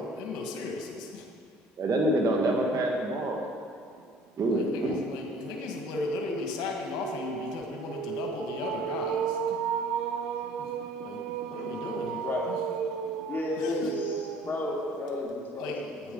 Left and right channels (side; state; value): both; normal; correlation 0.51